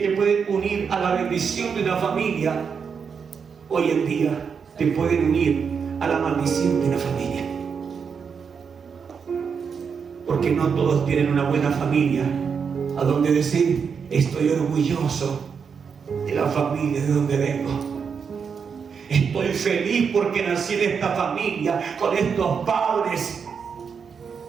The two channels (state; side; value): quieter; left; 6.3 dB